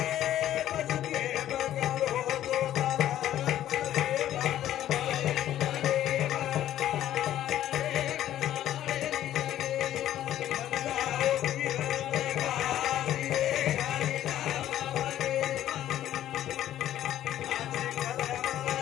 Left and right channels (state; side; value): quieter; right; 12.2 dB